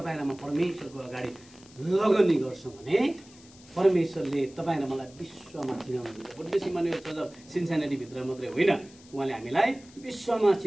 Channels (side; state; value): left; noise; hiss, 24 dB below the sound